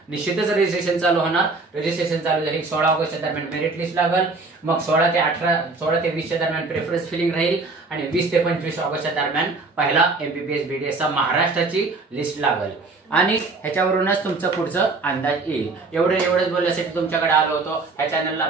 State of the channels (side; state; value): left; quieter; 3.7 dB